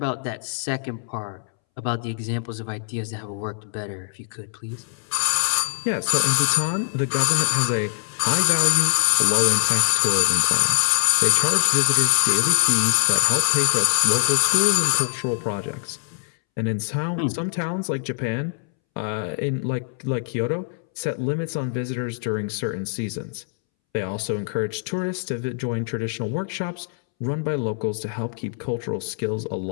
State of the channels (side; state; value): right; silent; 63 dB below the other